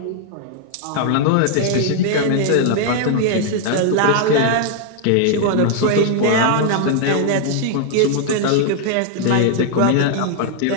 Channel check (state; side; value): different; both; correlation 0.00